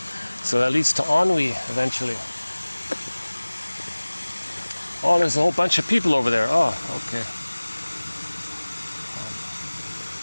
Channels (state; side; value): inverted; both; correlation -1.00